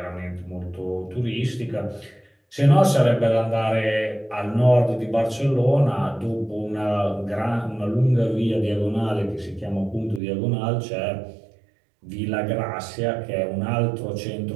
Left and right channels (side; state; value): left; drops out; at 10.2 s